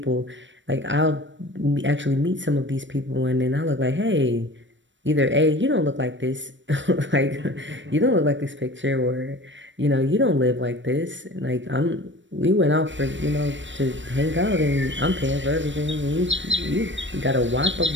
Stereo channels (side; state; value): left; late; 0.54 ms